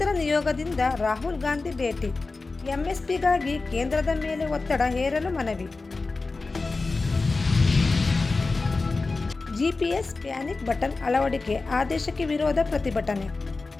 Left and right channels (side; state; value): right; quieter; 3.7 dB